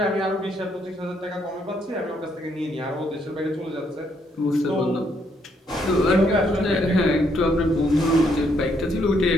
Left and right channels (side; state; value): both; normal; correlation 0.72